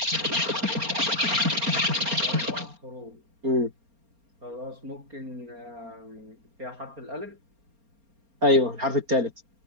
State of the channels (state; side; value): late; left; 4.3 ms